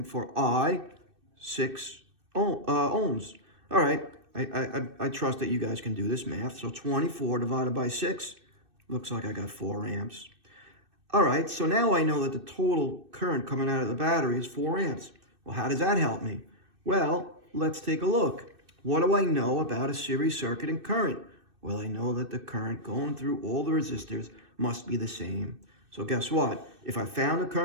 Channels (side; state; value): left; late; 2.6 ms